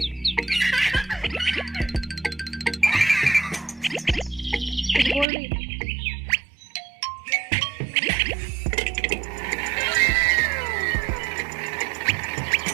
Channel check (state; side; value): drops out; left; at 5.2 s